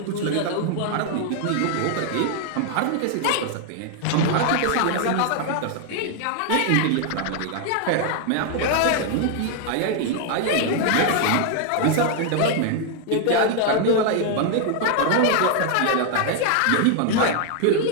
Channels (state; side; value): different; both; correlation 0.00